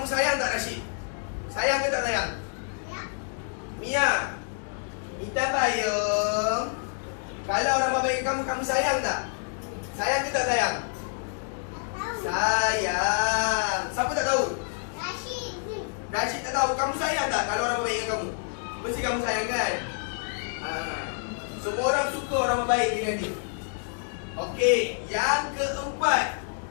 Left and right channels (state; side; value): silent; right; 60 dB below the other